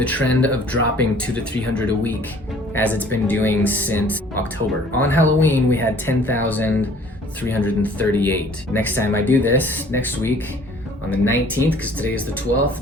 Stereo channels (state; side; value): normal; both; correlation 0.53